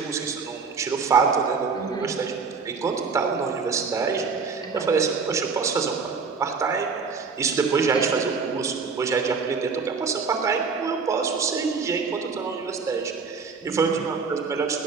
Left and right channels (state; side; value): quieter; left; 5.1 dB